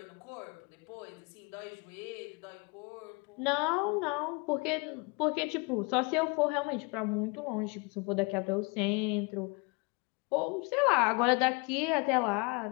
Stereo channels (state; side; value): quieter; right; 29.3 dB